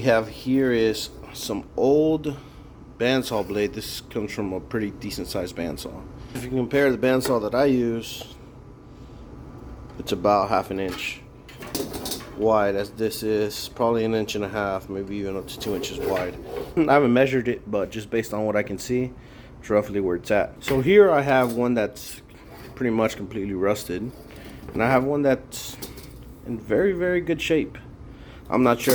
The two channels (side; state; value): both; identical; correlation 1.00